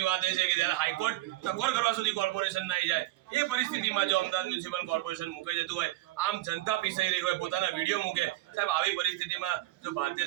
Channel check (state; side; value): quieter; left; 17.4 dB